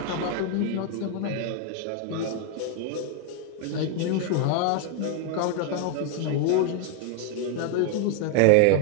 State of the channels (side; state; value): both; different; correlation 0.01